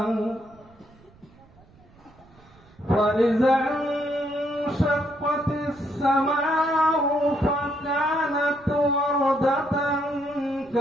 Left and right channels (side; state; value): right; noise; rumble, 27 dB below the sound